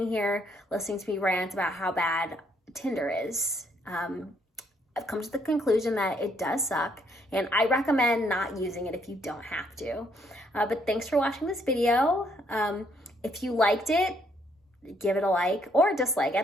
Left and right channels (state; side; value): normal; both; correlation 0.70